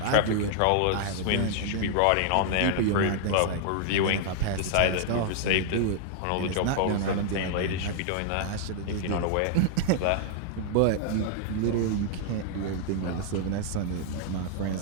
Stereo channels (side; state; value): both; different; correlation -0.01